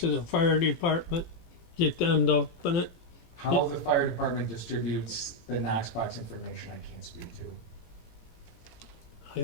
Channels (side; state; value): right; late; 18 ms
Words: the fire department, get them to open it? How the fire department distributes the Knox box information, I can't speak to. I